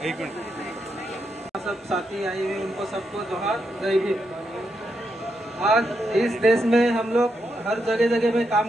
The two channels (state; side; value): normal; both; correlation 0.82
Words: मिनट। सब साथी आए हुए उनको सबको जोहार, जय भीम। आज इस देश में हम लोग हर जगह जगह में